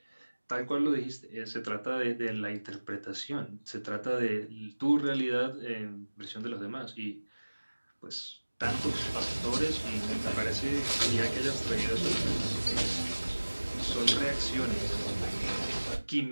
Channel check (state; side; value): inverted; both; correlation -1.00